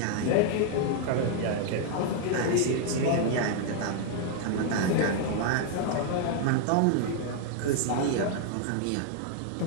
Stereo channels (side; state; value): both; different; correlation 0.00